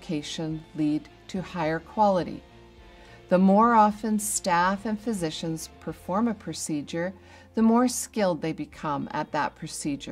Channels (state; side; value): identical; both; correlation 1.00